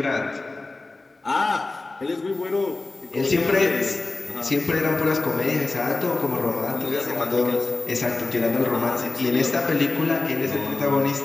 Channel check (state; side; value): quieter; right; 3.2 dB